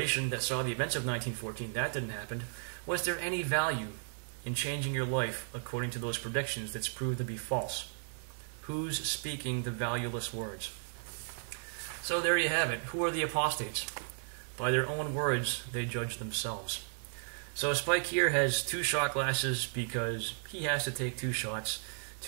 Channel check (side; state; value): left; silent; digital silence